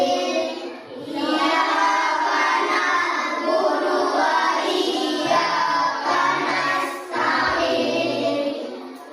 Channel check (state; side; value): identical; both; correlation 1.00